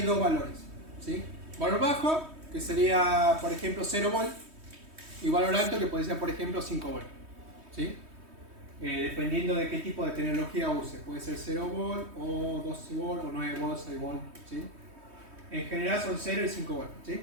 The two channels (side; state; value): left; late; 3.2 ms